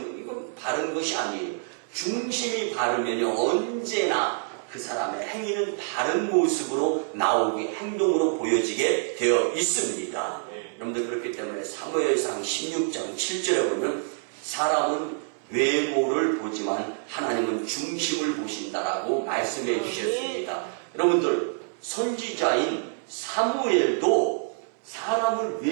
이건 바른 것이 아니에요. 중심이 바르면요, 언제나 그 사람의 행위는 바른 모습으로 나오게, 행동으로 보여지게 되어 있습니다. 여러분들, 그렇기 때문에 사무엘상 16장 7절에 보면 사람은 외모를 보지만 하나님은 중심을 보신다라고 말씀해 주셨습니다. 여러분들, 선지자인 사무엘도 사람을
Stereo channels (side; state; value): left; silent; 60 dB below the other